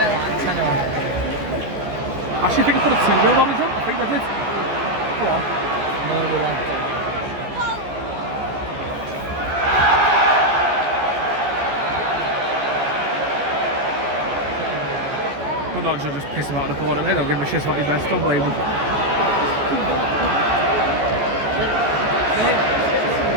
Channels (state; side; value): late; left; 14 ms